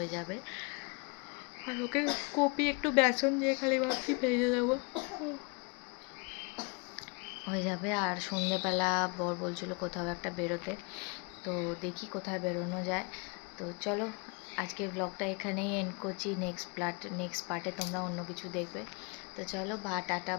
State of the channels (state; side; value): quieter; right; 31.5 dB